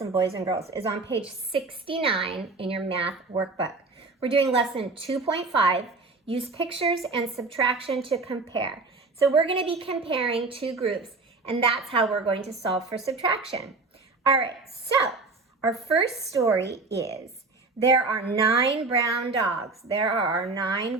boys and girls, is on page 69 in your math workbook. We're doing lesson 2.5, use pictures and subtraction to compare. So we're going to be comparing two groups, and that's how we're going to solve for subtraction. All right, so our first story is there are 9 brown dogs. There are 9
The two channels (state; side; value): quieter; left; 3.7 dB